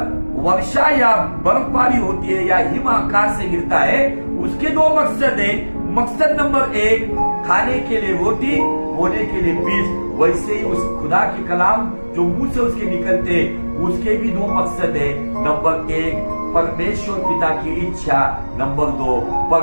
वर्षा या बर्फबारी होती है या हिम आकाश से गिरता है, उसके 2 मकसद है। मकसद नंबर 1 खाने के लिए रोटी, बोने के लिए बीज। वैसे ही उस खुदा की कलाम जो मुंह से उसके निकलते, उसके भी 2 मकसद है। नंबर 1 परमेश्वर पिता की इच्छा, नंबर 2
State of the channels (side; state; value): both; inverted; correlation -1.00